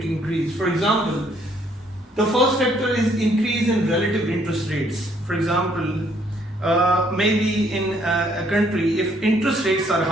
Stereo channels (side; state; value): both; normal; correlation 0.67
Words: increase? For example, the first factor is increase in relative interest rates. For example, maybe in a country, if interest rates are